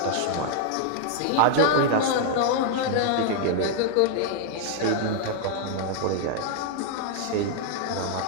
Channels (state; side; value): different; both; correlation 0.00